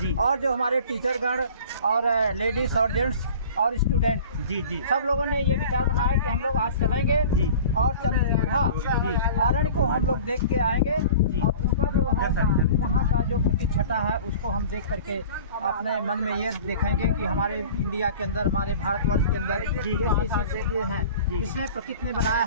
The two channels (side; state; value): both; inverted; correlation -0.42